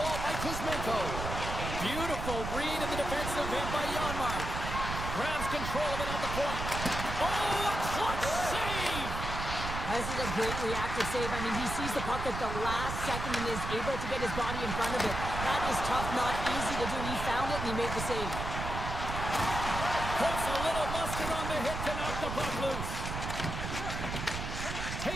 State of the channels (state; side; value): noise; right; rumble, 5 dB below the sound